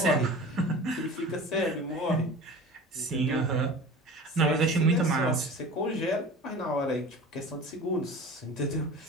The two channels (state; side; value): normal; both; correlation 0.37